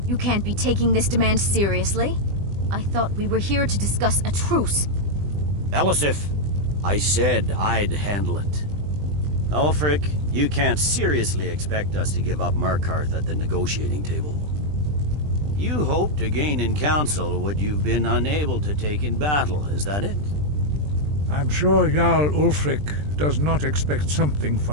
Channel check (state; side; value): late; left; 20 ms